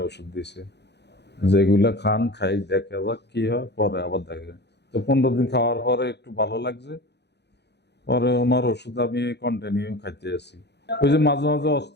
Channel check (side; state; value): right; late; 0.49 ms